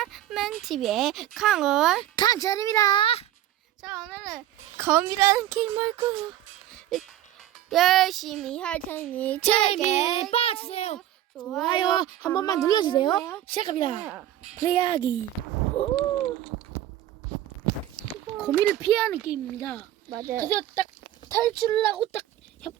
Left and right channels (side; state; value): left; quieter; 12.8 dB